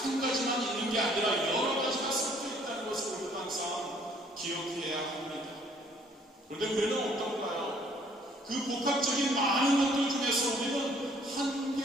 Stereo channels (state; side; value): normal; both; correlation 0.61